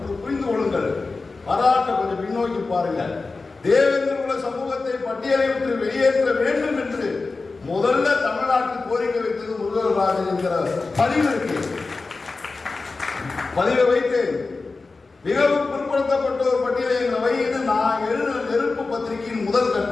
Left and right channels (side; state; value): right; quieter; 3.9 dB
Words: புரிந்து கொள்ளுங்கள், வரலாற்றை கொஞ்சம் பின்னோக்கி பாருங்க. தேவேந்திர சமூகத்தை பட்டியலை விட்டு வெளியேற்ற வேண்டும் என்று முதல்ல தமிழ்நாட்டில் கோரிக்கை வைத்தது முருகராஜன் என்கிற பதிவு இருக்கு. பதிவை வைத்து மிகவும் பிற்படுத்தப்பட்ட ஒரு பட்டியலை எங்களை வைத்து நான் எழுதின நெருப்பு பத்திரிகையின் முதல்